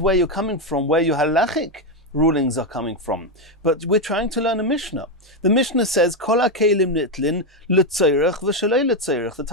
you're coming from, where your halachic rulings are coming from. But we're trying to learn a Mishnah. The Mishnah says, Kol ha'kelim nitlin l'tzeirach v'shalei l'tzeirach. The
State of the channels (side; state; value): both; normal; correlation 0.07